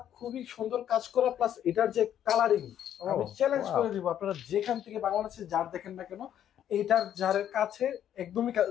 খুবই সুন্দর কাজ করা, প্লাস এটার যে কালারিং, আমি চ্যালেঞ্জ করে দিব, আপনারা যেখান থেকে বাংলাদেশে ঝাড় দেখেন না কেন, এইটার ঝাড়ের কাছে একদমই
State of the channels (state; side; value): quieter; right; 10.3 dB